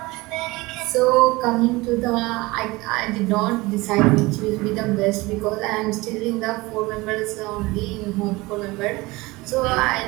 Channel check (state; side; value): quieter; left; 21.9 dB